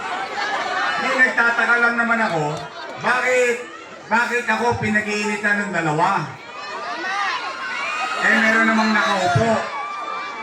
nagtataka lang naman ako, bakit ako pinag-iinitan ng dalawa? Eh, meron namang nakaupo.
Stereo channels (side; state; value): both; identical; correlation 1.00